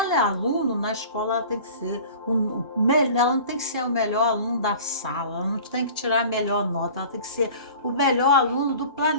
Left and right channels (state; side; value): inverted; both; correlation -0.42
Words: é aluno, na escola ela tem que ser ela não tem que ser o melhor aluno da sala, ela não tem que tirar a melhor nota, ela tem que ser o melhor aluno do